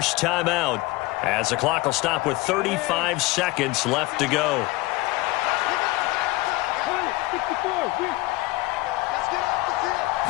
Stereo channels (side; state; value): right; quieter; 20.2 dB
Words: timeout as the clock will stop with 35 seconds left to go.